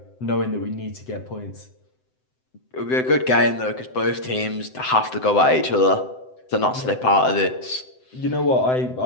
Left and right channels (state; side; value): late; right; 7.8 ms